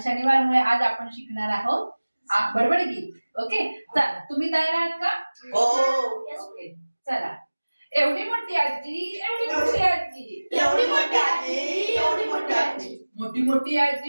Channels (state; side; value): inverted; both; correlation -1.00